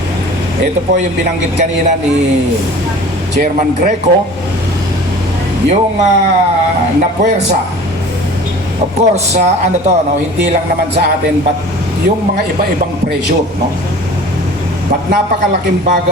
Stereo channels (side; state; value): both; normal; correlation 0.42